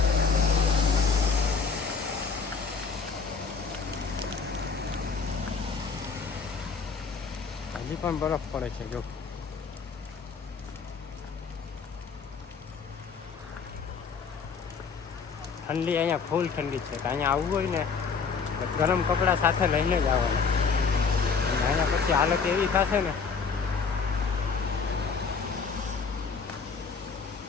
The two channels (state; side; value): quieter; right; 5.5 dB